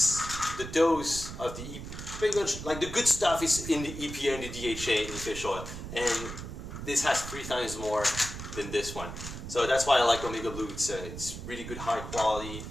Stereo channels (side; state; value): right; noise; rumble, 9 dB below the sound